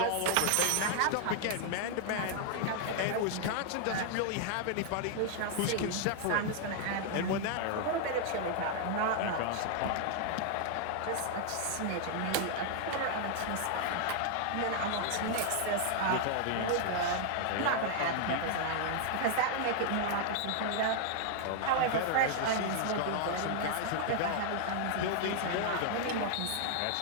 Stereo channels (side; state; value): both; different; correlation 0.00